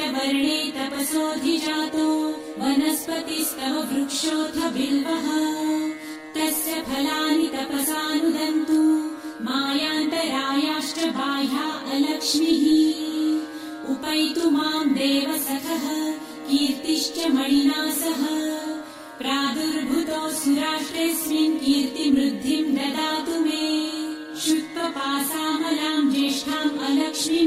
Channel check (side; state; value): both; identical; correlation 1.00